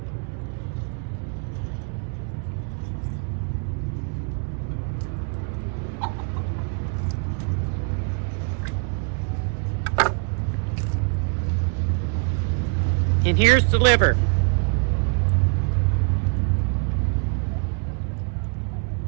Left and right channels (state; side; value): quieter; left; 39.3 dB